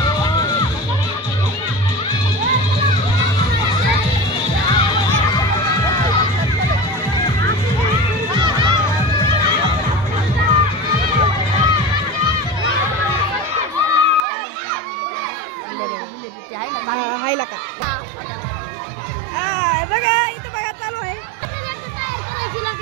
हायला का बघा इथं बघा चालू आहे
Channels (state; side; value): drops out; left; at 14.2 s